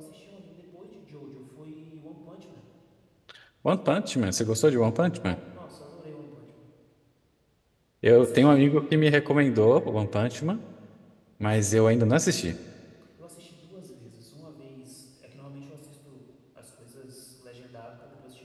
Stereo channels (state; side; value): identical; both; correlation 1.00